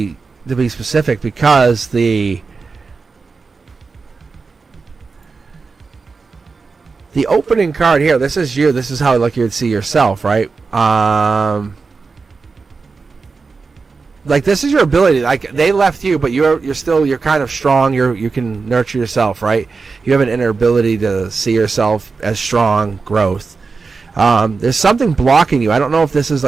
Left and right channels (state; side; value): quieter; left; 4.5 dB